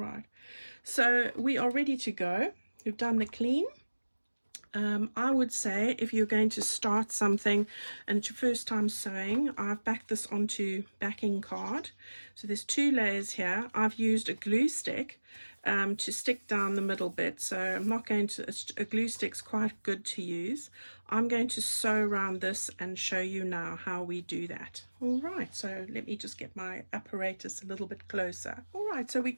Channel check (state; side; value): inverted; both; correlation -1.00